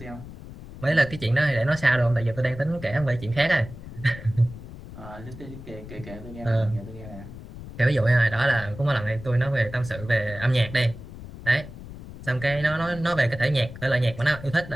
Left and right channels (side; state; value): left; noise; rumble, 14 dB below the sound